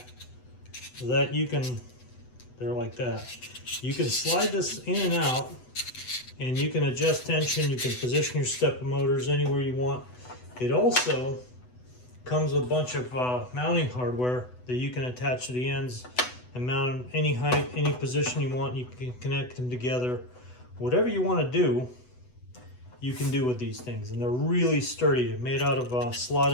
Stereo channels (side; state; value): right; late; 8.0 ms